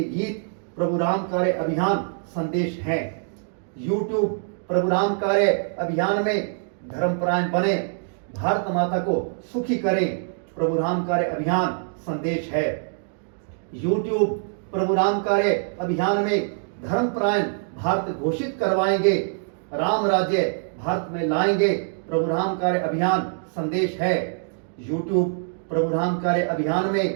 गीत, प्रभु राम कार्य अभियान संदेश हैं। YouTube प्रभु राम कार्य अभियान में धर्मपरायण बने, भारत माता को सुखी करें, प्रभु राम कार्य अभियान संदेश है। YouTube प्रभु राम कार्य अभियान में धर्मपरायण भारत घोषित करवाएंगे, राम राज्य भारत में लाएंगे, प्रभु राम कार्य अभियान संदेश है। YouTube प्रभु राम कार्य अभियान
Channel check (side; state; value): left; silent; 62 dB below the other